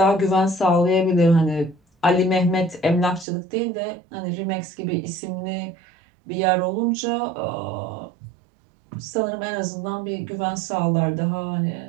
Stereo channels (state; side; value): drops out; left; at 3.2 s